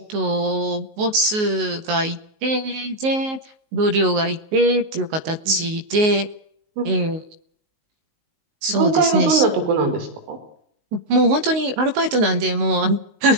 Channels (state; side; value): late; left; 19 ms